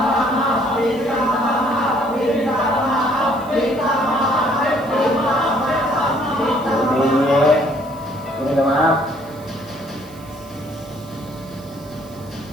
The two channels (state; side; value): noise; right; hiss, 24 dB below the sound